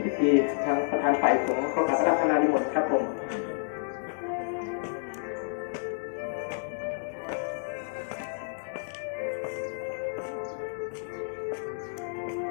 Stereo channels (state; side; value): silent; right; digital silence